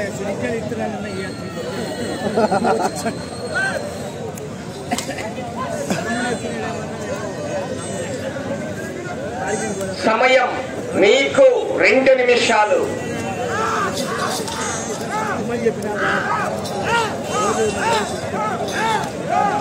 సిరిగ్గాలు ఇస్తున్నానన్న సమయం మీకు 2 నిమిషాలు.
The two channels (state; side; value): identical; both; correlation 1.00